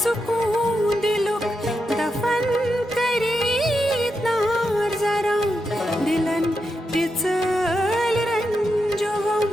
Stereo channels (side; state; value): both; normal; correlation 0.86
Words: सुकून दिलुक दफन करीत नार जरा दिलन तिचल रंजोगम